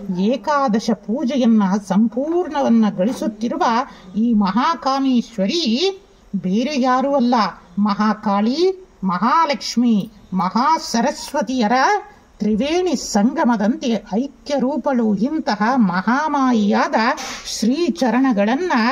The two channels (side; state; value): both; identical; correlation 1.00